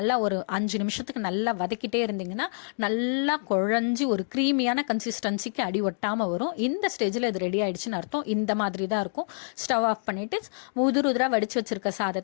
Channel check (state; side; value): silent; right; digital silence